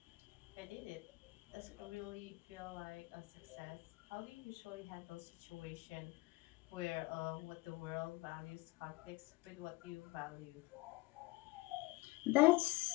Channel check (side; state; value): right; quieter; 21.9 dB